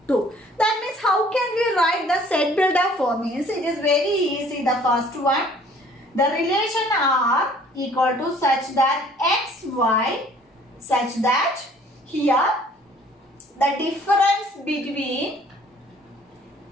2. That means how can we write the set builder form? Means it is very easy. The first one, the relation R equal to such that x, y, such that here the difference between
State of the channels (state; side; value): normal; both; correlation 0.55